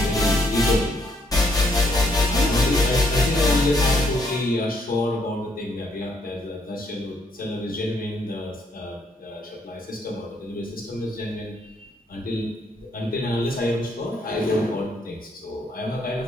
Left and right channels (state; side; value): normal; both; correlation 0.71